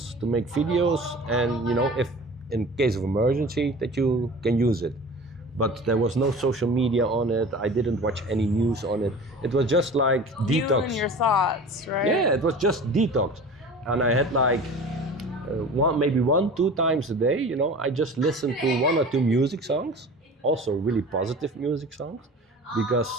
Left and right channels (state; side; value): normal; both; correlation 0.38